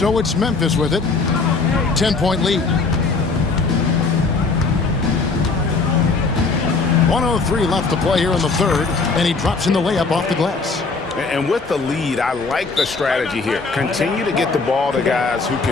it's Memphis with it. 10-point lead. 1:03 left to play here in the third, and he drops in the layup off the glass. And with the lead, I like the strategy here. Continue to get the ball to guys who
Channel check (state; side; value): quieter; right; 4.2 dB